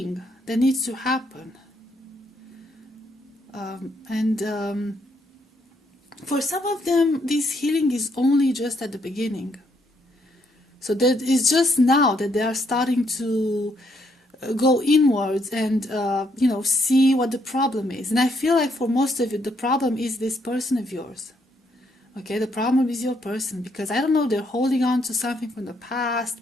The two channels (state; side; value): normal; both; correlation 0.73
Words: that needs to happen. For some of them, this healing is only just at the beginning. So that it's just now that they are starting to go inwards and see what the problem is. And I feel like for most of you, the problem is this person of yours. Okay, the problem is your person, because I don't know, they're holding on to something from the